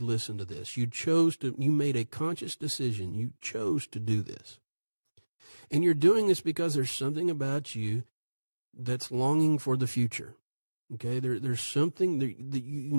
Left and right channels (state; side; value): inverted; both; correlation -1.00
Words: listen to this. You made a conscious decision. You chose to do this. And you're doing this because there's something about you that's longing for the future. Okay, there's something that you